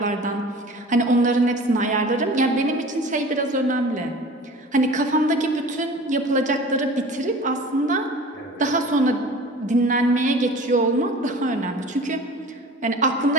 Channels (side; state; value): both; normal; correlation 0.41